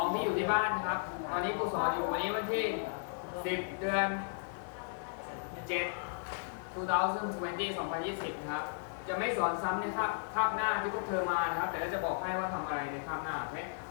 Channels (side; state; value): right; silent; 54 dB below the other